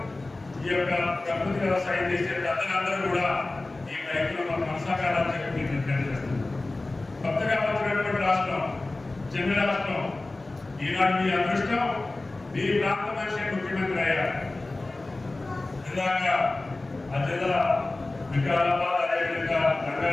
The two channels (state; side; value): quieter; right; 3.0 dB